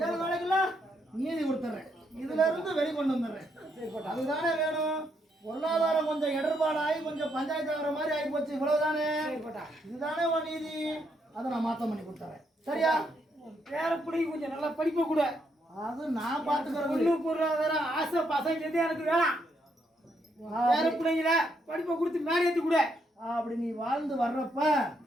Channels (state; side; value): normal; both; correlation 0.76